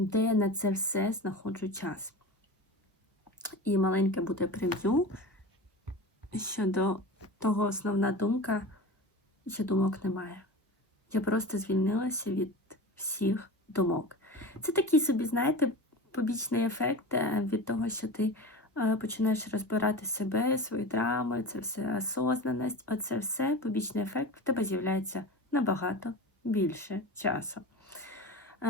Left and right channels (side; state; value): both; normal; correlation 0.30